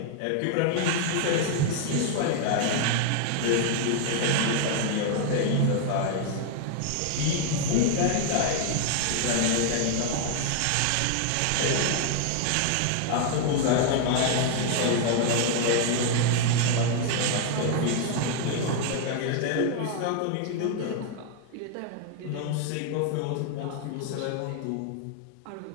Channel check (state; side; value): different; both; correlation 0.00